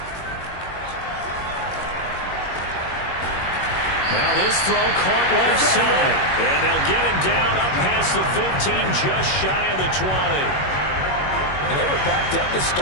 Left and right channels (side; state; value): right; late; 21 ms